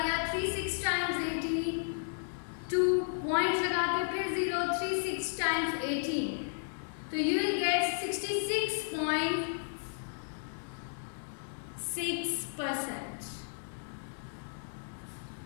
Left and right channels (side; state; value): right; silent; digital silence